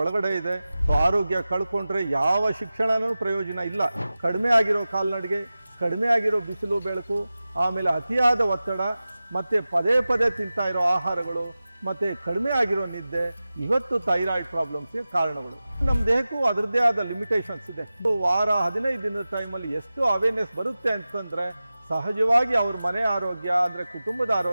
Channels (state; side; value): inverted; both; correlation -0.96